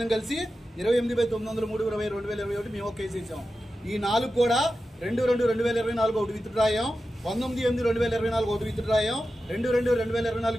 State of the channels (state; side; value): normal; both; correlation 0.92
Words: కలిసి 28/903/2021 మేము ఒక కేసు వేసాం. ఈ 4 కూడా 2/2/2024 ఒకటి విత్డ్రా అయ్యాం, 19/8/2024 ఒకటి విత్డ్రా అయ్యాం, 2/2/2024